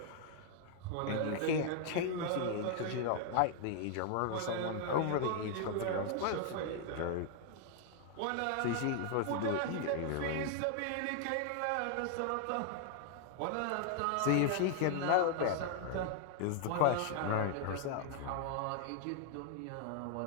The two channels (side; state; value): both; different; correlation 0.00